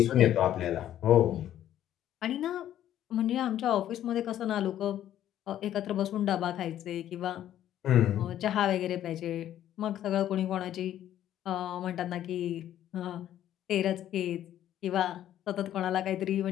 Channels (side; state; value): right; quieter; 11.7 dB